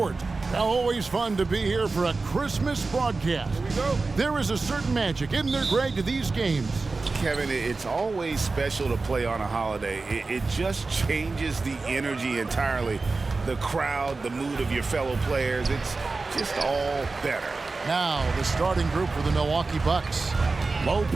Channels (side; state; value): left; quieter; 3.8 dB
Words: Now, always fun to be here for a Christmas broadcast. Here we go. There is a certain magic, isn't there, Greg, to these games? Kevin, it's always special to play on a holiday. It just changes the energy entirely. The crowd, the mood of your fellow players, it's just all better. Now, the starting group for the Milwaukee Bucks.